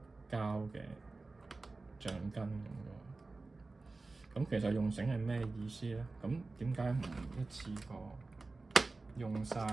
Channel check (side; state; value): left; quieter; 3.5 dB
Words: 膠嘅橡筋咁喎。咁其實用繩係咩意思咧？咁點解唔一次過用晒